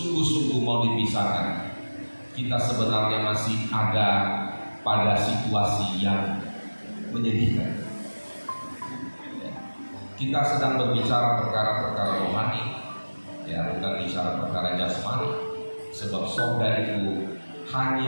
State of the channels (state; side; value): inverted; both; correlation -1.00